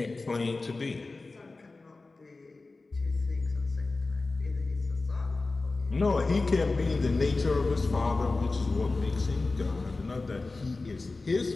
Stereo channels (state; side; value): quieter; right; 3.5 dB